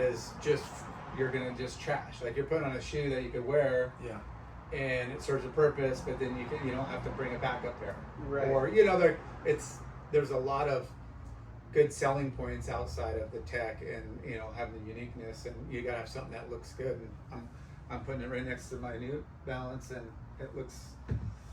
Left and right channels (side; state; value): both; identical; correlation 1.00